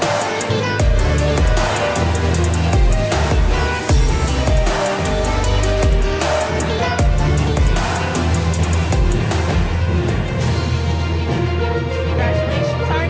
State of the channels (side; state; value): both; identical; correlation 1.00